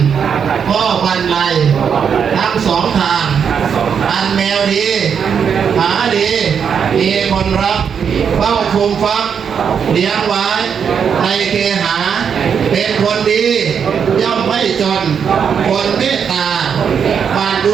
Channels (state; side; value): quieter; left; 7.1 dB